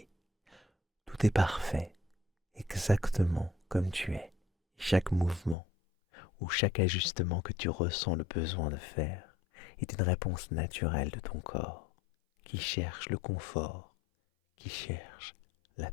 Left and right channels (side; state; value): right; drops out; at 5.6 s